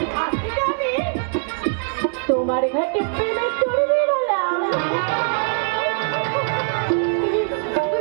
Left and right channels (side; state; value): left; silent; 64 dB below the other